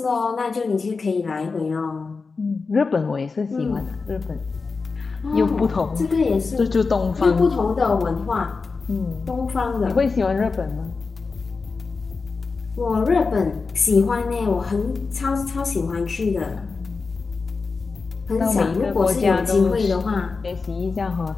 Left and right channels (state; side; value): quieter; right; 4.4 dB